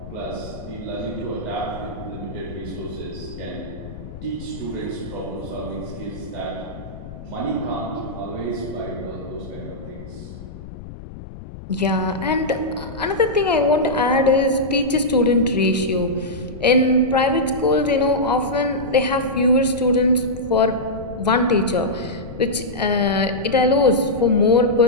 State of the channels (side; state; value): left; noise; rumble, 13 dB below the sound